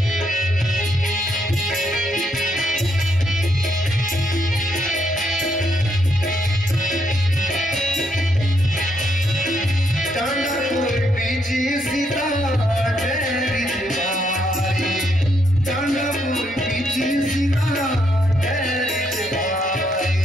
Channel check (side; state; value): both; normal; correlation 0.75